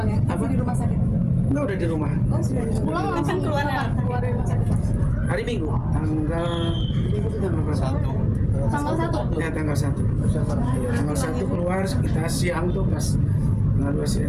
ya? Apa? Masih di rumah sakit. Enggak, udah di rumah. Oh sudah di rumah. Pulang langsung keluar ya? keluar dari rumah sakit. Hari Minggu, tanggal Minggu itu tanggal berapa? Tanggal 1. Ya tanggal 1. Tanggal 1 keluar, kita siang tuh pas tanggal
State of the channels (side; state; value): both; identical; correlation 1.00